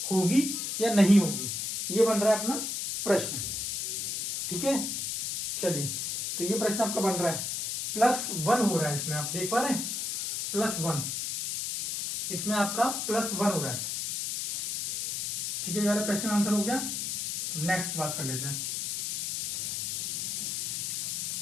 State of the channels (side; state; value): left; noise; hiss, 2 dB below the sound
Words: होगी या नहीं होगी, ये बन रहा है अपना प्रश्न, ठीक है, चलिए तो ये प्रश्न आपका बन रहा है, +1 हो रहा है इसमें, आप देख पा रहे हैं, +1, इसमें आपका +1 हो रहा है, ठीक है, ये वाला प्रश्न का आंसर हो गया। नेक्स्ट बात कर लेते हैं,